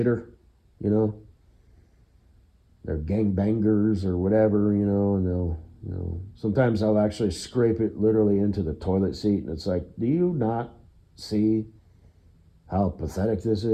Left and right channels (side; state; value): both; identical; correlation 1.00